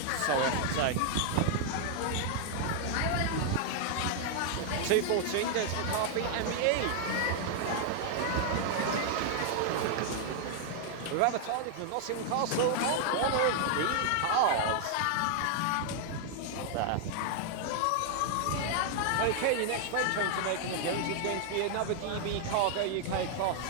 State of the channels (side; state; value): both; different; correlation 0.00